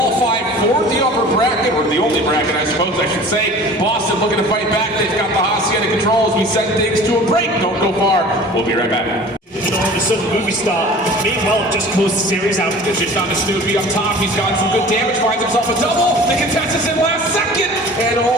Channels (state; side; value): normal; both; correlation 0.43